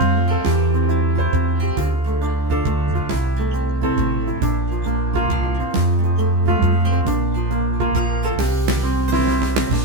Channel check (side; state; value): left; late; 14 ms